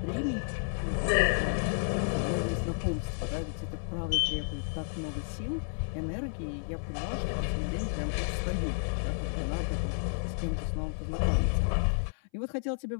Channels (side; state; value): right; silent; 57 dB below the other